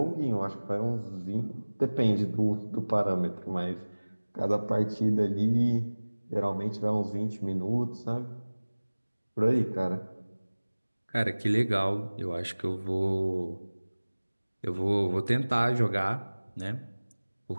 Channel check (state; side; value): inverted; both; correlation -1.00